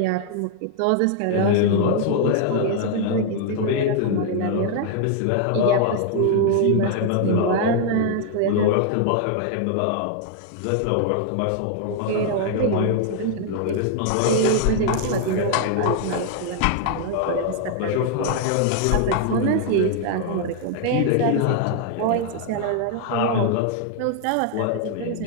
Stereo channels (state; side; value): different; both; correlation 0.00